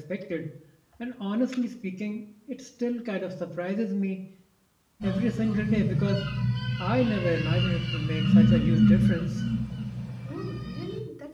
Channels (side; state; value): both; identical; correlation 1.00